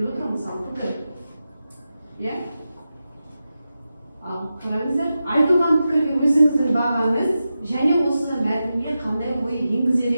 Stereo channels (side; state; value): both; inverted; correlation -0.91